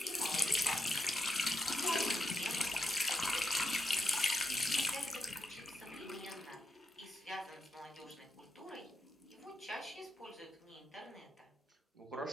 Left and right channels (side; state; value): both; normal; correlation 0.83